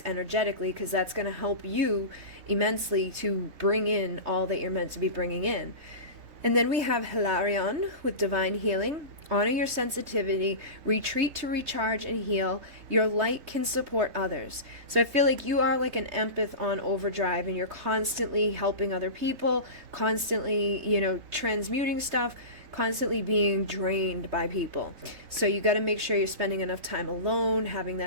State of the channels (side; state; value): left; late; 3.2 ms